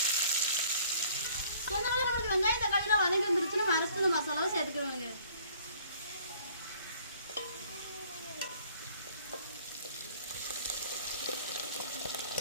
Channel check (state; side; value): inverted; both; correlation -0.56